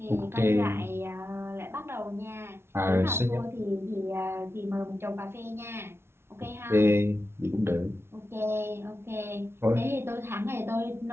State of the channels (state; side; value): late; left; 0.12 ms